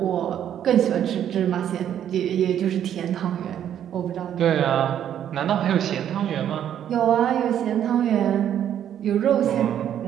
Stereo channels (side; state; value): left; quieter; 10.1 dB